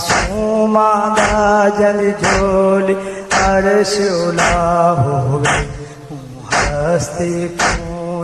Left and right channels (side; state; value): both; identical; correlation 1.00